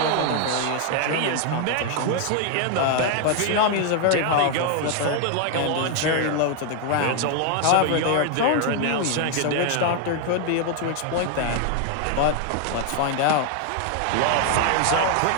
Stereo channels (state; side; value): different; both; correlation 0.00